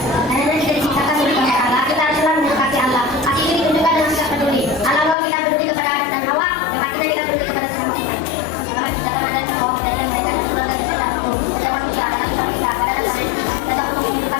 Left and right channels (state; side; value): drops out; right; at 5.2 s